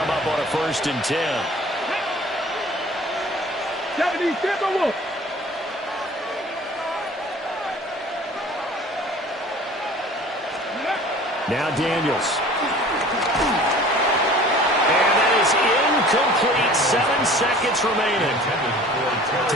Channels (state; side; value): normal; both; correlation 0.46